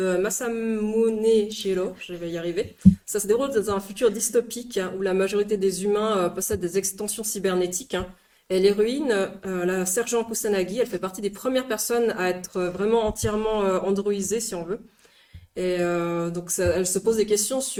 Masamune Shirow, je vais y arriver. Ça se déroule dans un futur dystopique hein, où la majorité des humains possèdent des extensions cybernétiques, hein. Et l'héroïne, la sergent Kusanagi, elle fait partie des premières personnes à être vraiment entièrement androïsée, si on veut. Et donc elle se pose des questions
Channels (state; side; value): identical; both; correlation 1.00